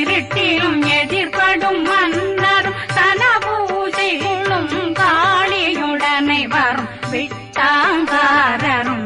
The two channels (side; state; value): both; identical; correlation 1.00